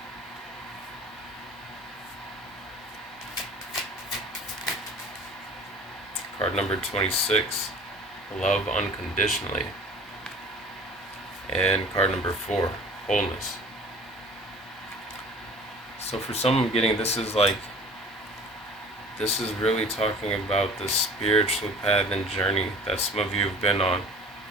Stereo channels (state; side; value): normal; both; correlation 0.45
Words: Card number 26, Love Unconditionally. And card number 4, Wholeness. So for some I'm getting, this is really talking about the spiritual path and journey that some of you have been on.